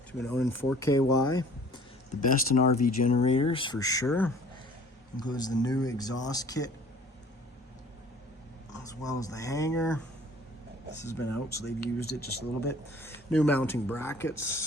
to an Onan 4KY. The best in RV generators for sure. Includes the new exhaust kit as well as the hanger. This has been out, so they've used it just a little bit. New mounting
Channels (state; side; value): normal; both; correlation 0.51